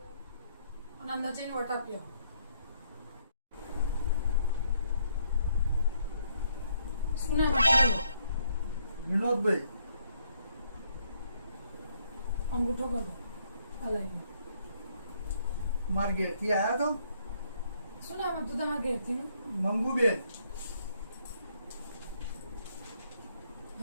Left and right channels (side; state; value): both; inverted; correlation -0.70